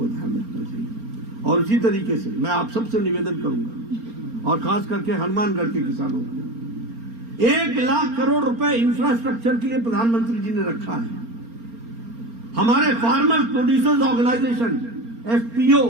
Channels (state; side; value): late; left; 4.3 ms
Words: ध्यान रखना चाहिए। और इसी तरीके से मैं आप सबसे निवेदन करूंगा, और खास करके हनुमानगढ़ के किसानों को, 1 लाख करोड़ रुपए इंफ्रास्ट्रक्चर के लिए प्रधानमंत्री जी ने रखा है। हमारे फार्मर्स प्रोड्यूसर्स ऑर्गेनाइजेशन FPO,